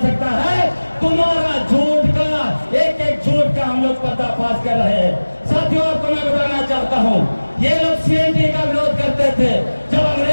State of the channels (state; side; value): inverted; both; correlation -1.00